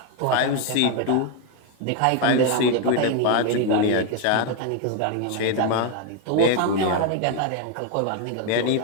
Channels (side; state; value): both; different; correlation 0.01